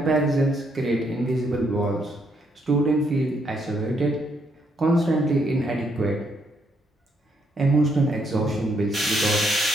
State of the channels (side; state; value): both; normal; correlation 0.74